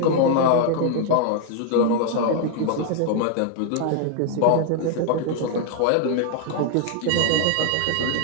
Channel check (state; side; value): different; both; correlation 0.00